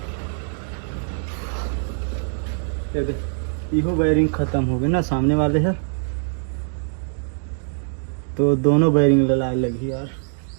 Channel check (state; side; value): silent; left; digital silence